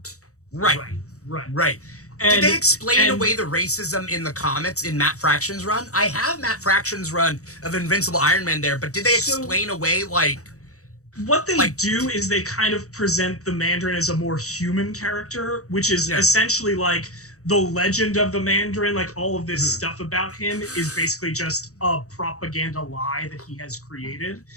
Right. And, did they explain away the racism in the comics in Matt Fraction's run? I have Matt Fraction's run of Invincible Iron Man there, but did they explain away like... What they do is they kind of present the Mandarin as a more human character, which is essentially like the legend of the Mandarin, like all of this stuff about him is basically just a propaganda lie that he has created.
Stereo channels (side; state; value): right; late; 0.65 ms